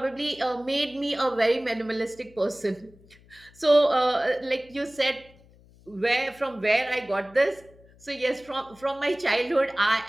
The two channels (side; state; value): left; noise; hum, 26 dB below the sound